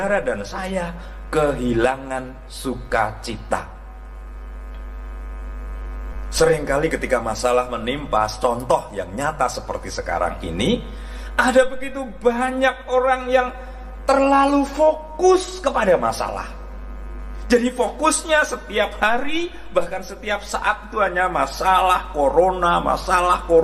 dan saya kehilangan sukacita. Seringkali ketika masalah menimpa, contoh yang nyata seperti sekarang ini, ada begitu banyak orang yang terlalu fokus kepada masalah. Jadi fokusnya setiap hari, bahkan setiap saat itu hanya masalah corona, masalah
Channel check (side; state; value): both; identical; correlation 1.00